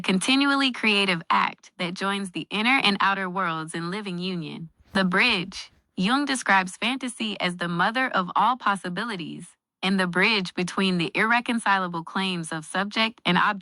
creative act that joins the inner and outer worlds in living union. The bridge. Jung describes fantasy as the mother of all possibilities, and the bridge between the irreconcilable claims of subject and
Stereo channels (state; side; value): identical; both; correlation 1.00